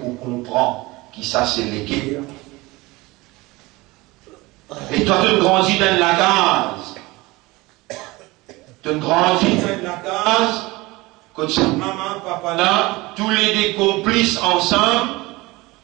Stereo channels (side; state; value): left; quieter; 21.8 dB